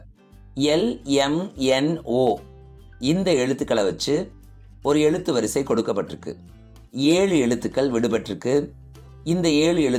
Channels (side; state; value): both; identical; correlation 1.00